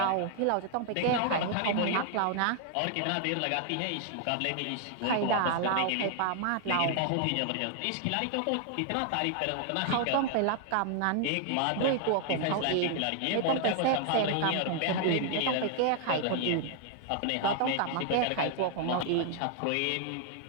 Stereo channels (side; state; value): both; different; correlation 0.00